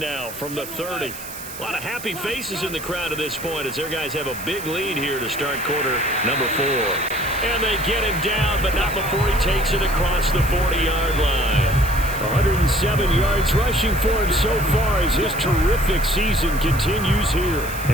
from the 30. A lot of happy faces in the crowd at this point as their guys have a big lead here to start quarter number 4. And they get him down, but not before he takes it across the 40-yard line. 107 yards rushing for him so far as his terrific season continues here.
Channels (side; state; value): right; noise; hiss, 12 dB below the sound